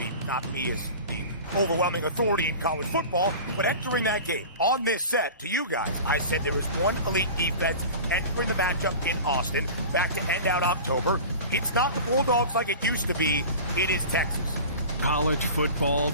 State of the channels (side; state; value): both; inverted; correlation -0.36